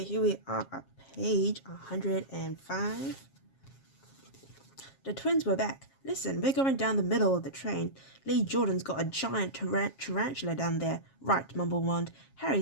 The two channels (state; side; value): late; right; 7.4 ms